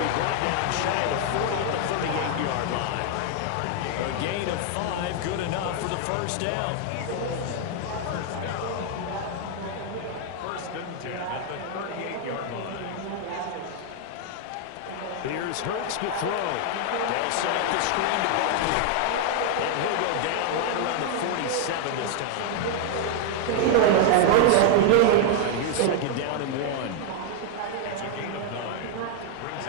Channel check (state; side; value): different; both; correlation 0.00